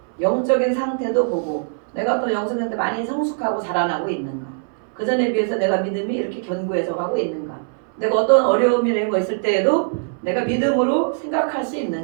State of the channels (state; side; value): silent; left; 63 dB below the other